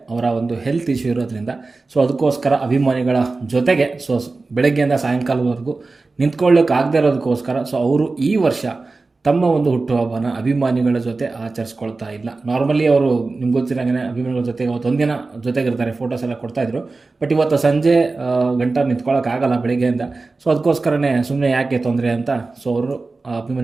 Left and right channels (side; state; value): left; quieter; 3.7 dB